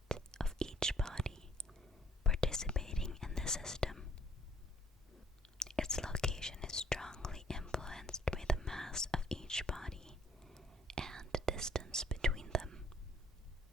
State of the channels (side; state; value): both; normal; correlation 0.61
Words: of each body participating in the system. Its location is strongly influenced by the mass of each body and the distance between them.